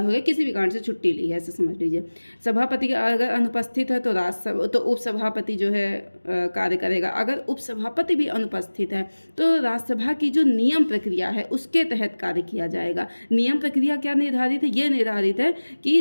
हो गया, किसी भी कारण से छुट्टी ली है, ऐसे समझ लीजिए। सभापति अगर अनुपस्थित है तो उपसभापति जो है कार्य करेगा। अगर उपसभापति भी अनुपस्थित है तो राज्यसभा की जो नियम प्रक्रिया है उसके तहत कार्य किया जाएगा। नियम प्रक्रिया क्या निर्धारित है? ये निर्धारित है कि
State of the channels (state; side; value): inverted; both; correlation -1.00